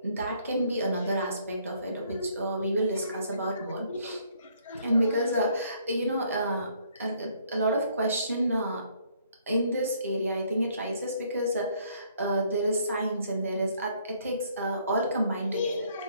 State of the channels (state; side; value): inverted; both; correlation -0.65